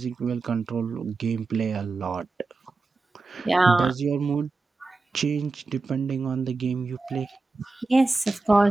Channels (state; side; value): quieter; left; 3.6 dB